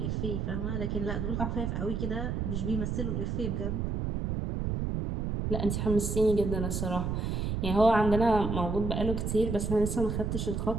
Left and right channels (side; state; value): right; noise; rumble, 1 dB below the sound